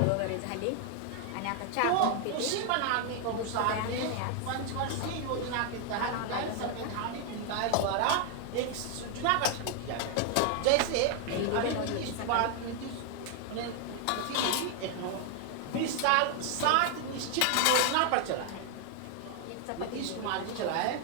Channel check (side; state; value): both; different; correlation 0.00